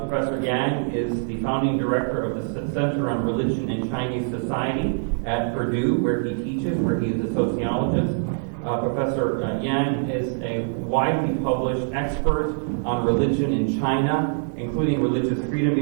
Professor Yang is the founding director of the Center on Religion and Chinese Society at Purdue, where he teaches, where he is a sociologist. Professor Yang is a widely published expert on religion in China, including religious freedom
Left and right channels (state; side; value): silent; left; digital silence